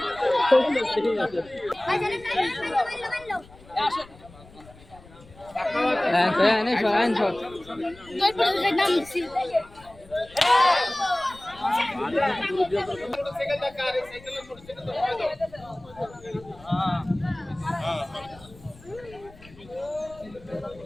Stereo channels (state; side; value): noise; left; rumble, 22 dB below the sound